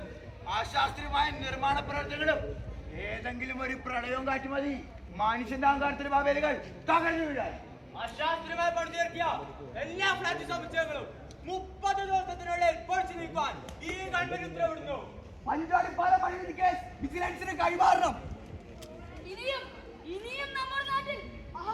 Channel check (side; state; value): both; identical; correlation 1.00